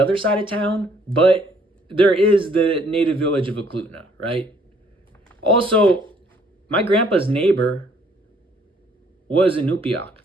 side of town, but there is the native village of Eklutna, right? Also, my grandpa's neighbor was Inupiaq.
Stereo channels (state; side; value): normal; both; correlation 0.63